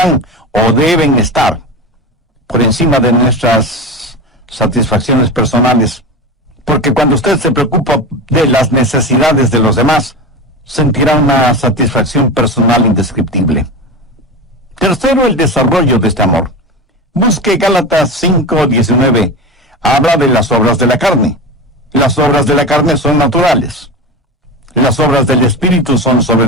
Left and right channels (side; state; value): both; normal; correlation 0.25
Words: o deben estar por encima de nuestras satisfacciones personales. Porque cuando usted se preocupa de las necesidades de los demás, sentirá una satisfacción personal indescriptible. Tercero, el desarrollo de este amor. Busque Gálatas 5:19. Habla de las obras de la carne. Las obras de la carne son naturales. Las obras del Espíritu son